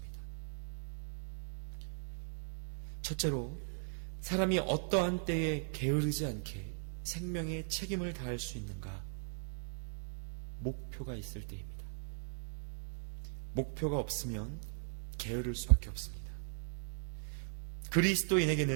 첫째로, 사람이 어떠한 때에 게으르지 않게 생명의 책임을 다할 수 있는가? 목표가 있을 때입니다. 목표가 없으면 게으를 수밖에 없습니다.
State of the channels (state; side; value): silent; left; 52 dB below the other